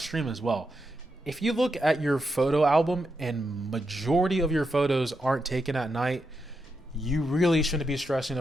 as well. If you look at your photo album and majority of your photos aren't taken at night, you really shouldn't be stressing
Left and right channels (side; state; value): both; normal; correlation 0.85